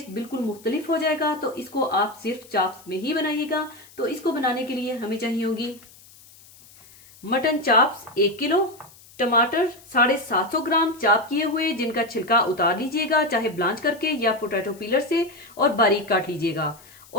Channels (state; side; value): noise; left; hiss, 24 dB below the sound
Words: बिल्कुल मुख्तलिफ हो जाएगा। तो इसको आप सिर्फ चाप्स में ही बनाइएगा। तो इसको बनाने के लिए हमें चाहिए होगी मटन चाप्स 1 किलो, टमाटर 750 ग्राम चाप किए हुए जिनका छिलका उतार लीजिएगा, चाहे ब्लांच करके या पोटैटो पीलर से, और बारीक काट लीजिएगा।